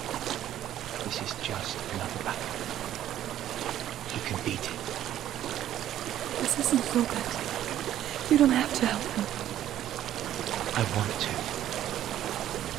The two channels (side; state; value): left; quieter; 12.0 dB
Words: This is just another battle. You can beat it. This isn't so bad. You don't have to help me. I want to.